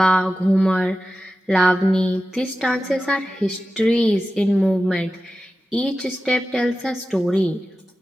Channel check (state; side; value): normal; both; correlation 0.94